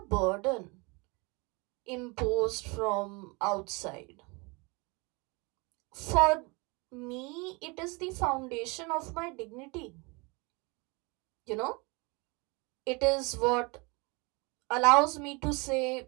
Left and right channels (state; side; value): quieter; left; 28.2 dB